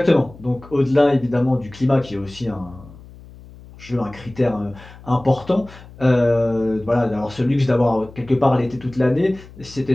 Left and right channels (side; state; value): left; noise; hum, 20 dB below the sound